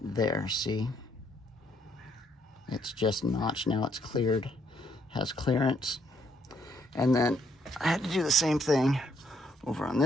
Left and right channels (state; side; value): normal; both; correlation 0.70